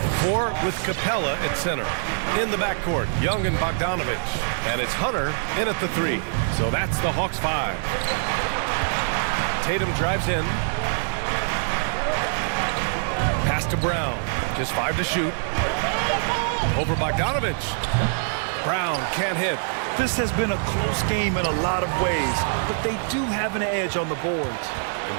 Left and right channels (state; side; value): silent; left; digital silence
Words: 4 with Capella at center. In the backcourt, Young and Bogdanovich. And it's Hunter in at the 3. So that's the Hawks 5. Tatum drives in. Pass to Brown. Just 5 to shoot. Over Bogdanovich. Brown can't hit. This has been a close game in a lot of ways, but they do have an edge on the boards. And